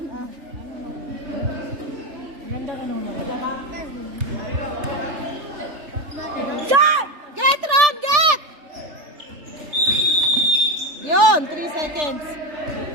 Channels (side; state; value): left; late; 3.4 ms